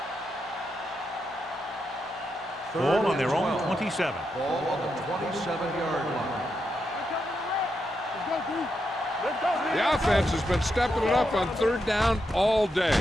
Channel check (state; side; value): normal; both; correlation 0.84